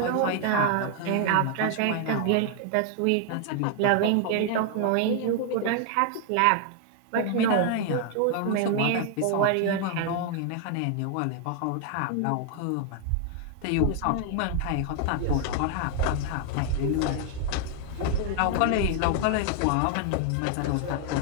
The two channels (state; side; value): different; both; correlation 0.00